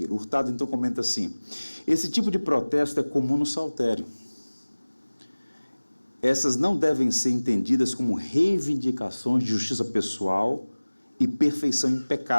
Hurtado então comenta assim, esse tipo de protesto é comum no saltério. Essas não devem ser entendidas como reivindicações de justiça pessoal e perfeição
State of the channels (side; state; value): both; inverted; correlation -1.00